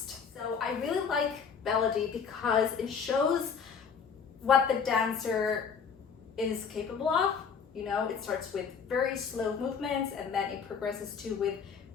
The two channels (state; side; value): quieter; right; 6.3 dB